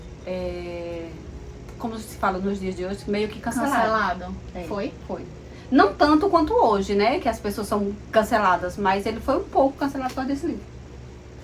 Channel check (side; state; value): both; identical; correlation 1.00